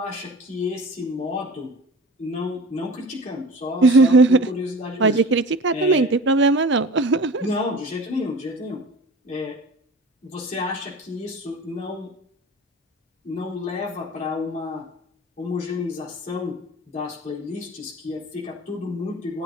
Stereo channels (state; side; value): normal; both; correlation 0.38